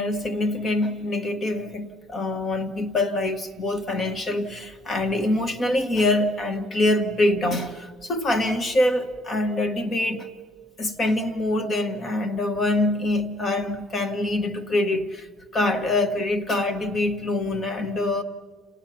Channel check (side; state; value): both; normal; correlation 0.63